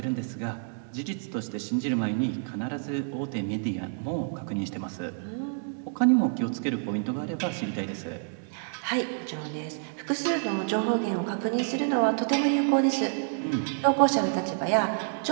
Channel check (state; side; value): silent; left; digital silence